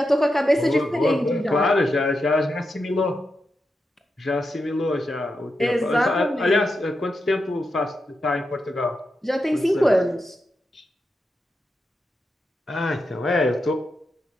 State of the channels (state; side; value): normal; both; correlation 0.87